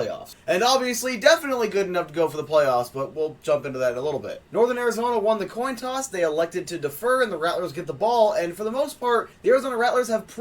And obviously, definitely good enough to go for the playoffs, but we'll jump into that in a little bit. Northern Arizona won the coin toss. They elected to defer, and the Rattlers get the ball. And for the most part, the Arizona Rattlers have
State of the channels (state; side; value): identical; both; correlation 1.00